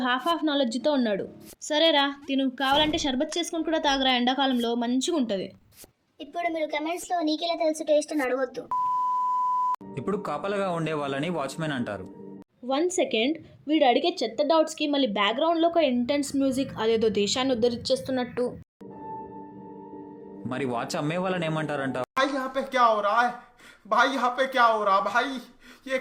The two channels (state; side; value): identical; both; correlation 1.00